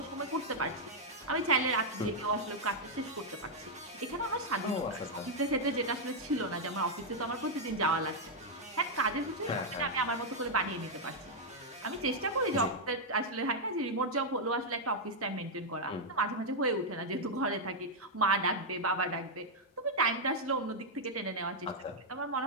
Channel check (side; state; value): both; normal; correlation -0.03